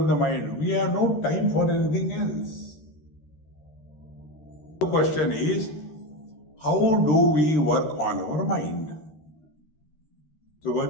the mind, we have no time for anything else. The question is, how do we work on our mind? So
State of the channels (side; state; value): right; late; 13 ms